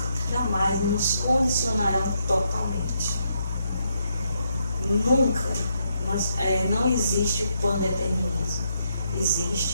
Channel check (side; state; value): both; inverted; correlation -0.78